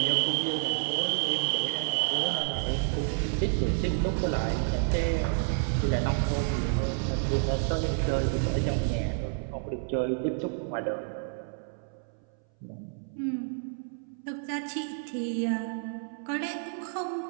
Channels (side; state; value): left; silent; 58 dB below the other